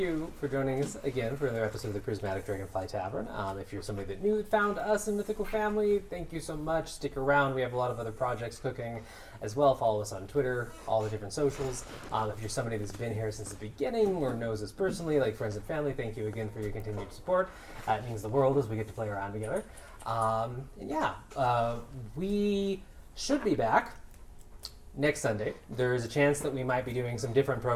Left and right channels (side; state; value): both; identical; correlation 1.00